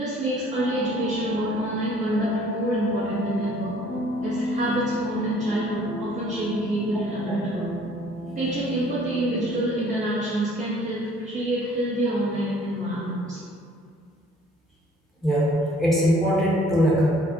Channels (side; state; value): both; normal; correlation 0.56